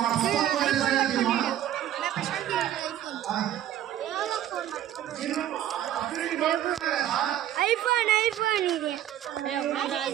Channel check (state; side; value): quieter; left; 11.8 dB